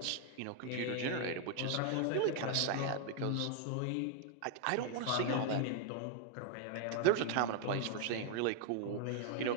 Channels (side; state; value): both; different; correlation 0.00